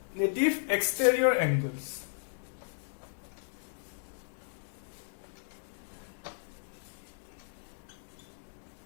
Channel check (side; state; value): right; silent; digital silence